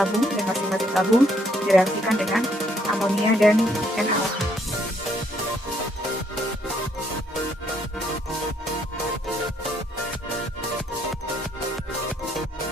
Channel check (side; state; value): both; normal; correlation 0.69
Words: dan masing-masing tabung direaksikan dengan amonia dan NaOH.